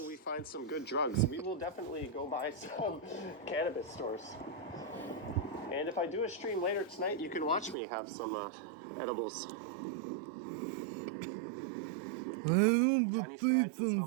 we find some good drugs? We will definitely go buy some cannabis stores. And if I do a stream later tonight, you can watch me have some edibles. Johnny Strides is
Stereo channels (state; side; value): drops out; left; at 7.8 s